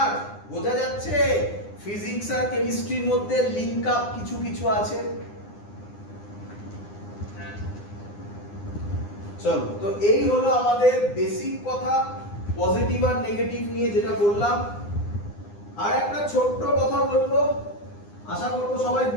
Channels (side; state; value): right; late; 9.8 ms